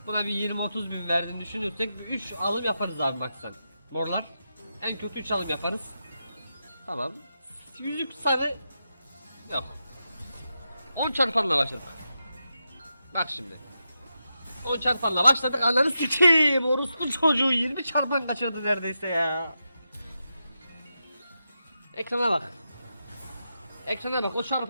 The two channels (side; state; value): both; inverted; correlation -0.88